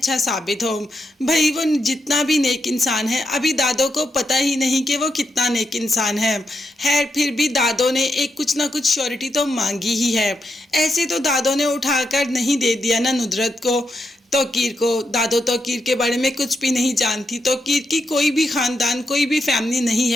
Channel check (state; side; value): normal; both; correlation 0.83